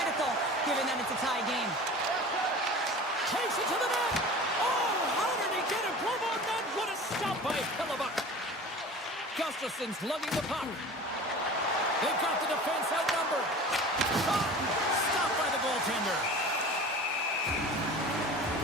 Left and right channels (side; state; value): both; normal; correlation 0.38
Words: given that it's a tie game. Takes it to the net! Oh, how did he get it? Glove on net! What a stop by Hellebuck! Gustafson's lugging the puck. They've got the defense outnumbered. Shot! Stopped by the goaltender.